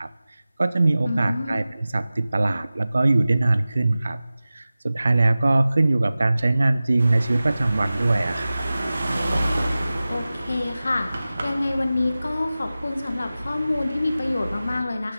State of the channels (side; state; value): both; inverted; correlation -0.96